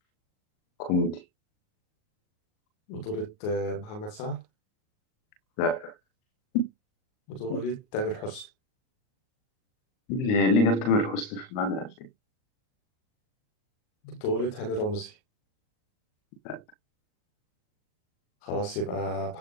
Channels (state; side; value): late; right; 38 ms